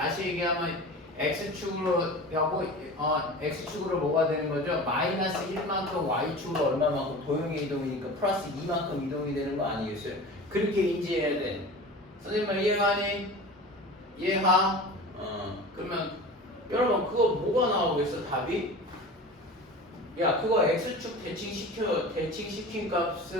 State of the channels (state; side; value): normal; both; correlation 0.35